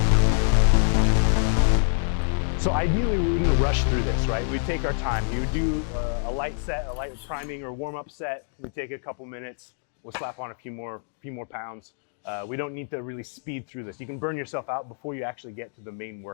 So ideally we wouldn't rush through this, right? We'd take our time. You would do a light set, a light priming or warm-up set. We'd take a couple minutes. We'll slap on a few more pounds. We don't need to really speed through this. You can burn yourself out before you actually get to the main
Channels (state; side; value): silent; right; digital silence